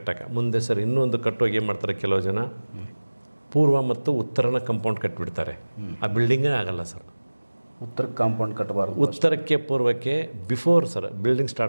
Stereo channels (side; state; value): both; inverted; correlation -1.00